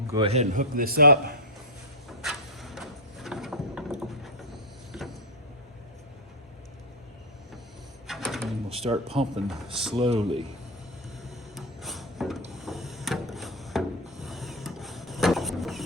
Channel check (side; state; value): both; normal; correlation 0.02